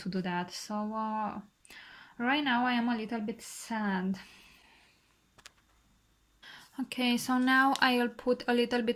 to do that. So right now I am a little bit sad. Okay, so now I'll put a little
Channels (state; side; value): identical; both; correlation 1.00